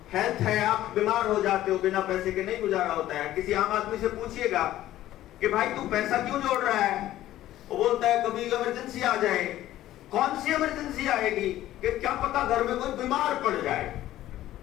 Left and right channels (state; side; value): quieter; right; 14.0 dB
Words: हेल्थ है, आप बीमार हो जाते हो, बिना पैसे के नहीं गुजारा होता है। किसी आम आदमी से पूछिएगा कि भाई तू पैसा क्यों जोड़ रहा है, वो बोलता है कभी इमरजेंसी आ जाए। कौन सी इमरजेंसी आएगी कि क्या पता घर में कोई बीमार पड़ जाए।